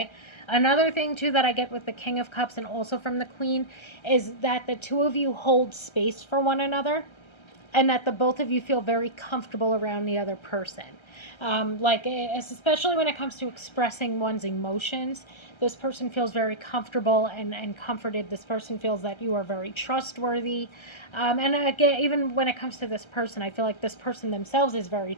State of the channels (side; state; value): right; late; 1.3 ms